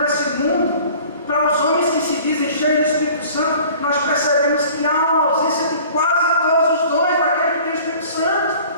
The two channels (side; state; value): both; inverted; correlation -0.47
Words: esse mundo, para os homens que se dizem cheios do Espírito Santo, nós percebemos que há uma ausência de quase todos os dons daquele que tem o Espírito Santo,